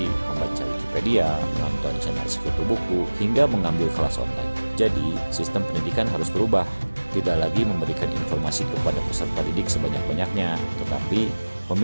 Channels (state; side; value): inverted; both; correlation -1.00